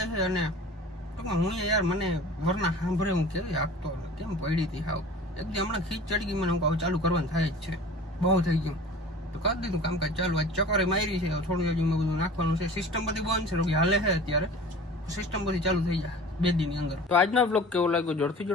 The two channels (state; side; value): normal; both; correlation 0.41